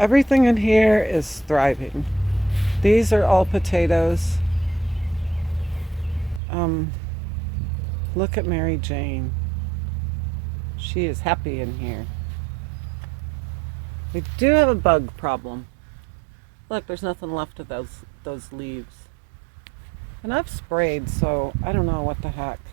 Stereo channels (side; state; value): left; drops out; at 6.4 s